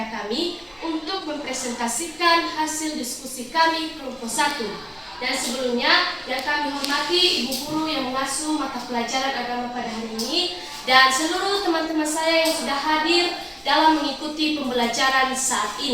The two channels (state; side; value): identical; both; correlation 1.00